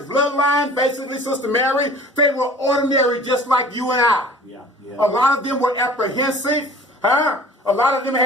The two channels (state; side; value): normal; both; correlation 0.46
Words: basically, Sister Mary, they were ordinary just like you and I. A lot of them were apprehensive. Huh? A lot of them